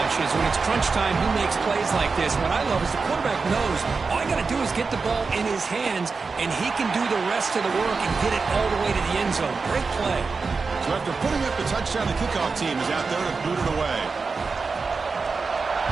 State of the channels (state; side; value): quieter; left; 4.5 dB